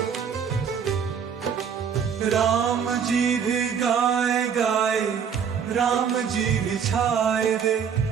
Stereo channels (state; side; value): quieter; left; 7.3 dB